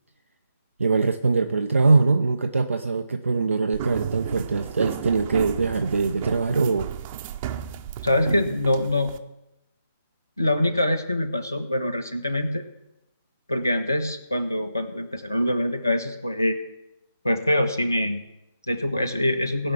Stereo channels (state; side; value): inverted; both; correlation -0.85